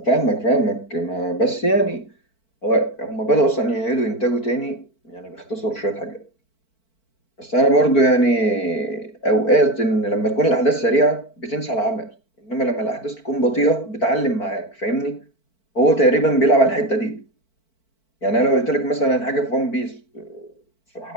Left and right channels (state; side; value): late; right; 4.5 ms